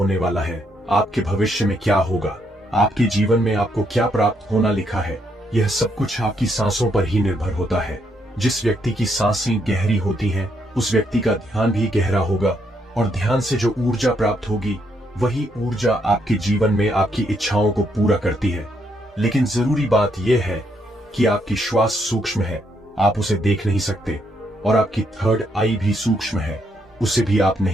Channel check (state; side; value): normal; both; correlation 0.75